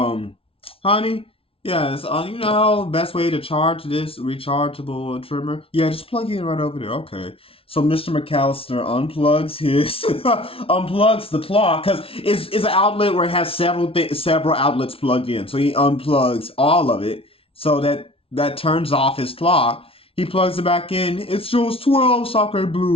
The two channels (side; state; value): right; late; 0.26 ms